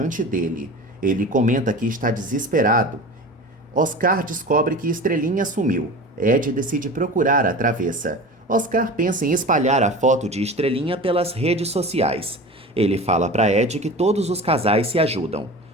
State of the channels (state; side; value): normal; both; correlation 0.34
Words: dele. Ele comenta que está desesperado. Oscar descobre que Estrelinha sumiu. Ed decide procurar a travessa. Oscar pensa em espalhar a foto de Estrelinha pelas redes sociais. Ele fala para Ed que todos os casais se ajudam.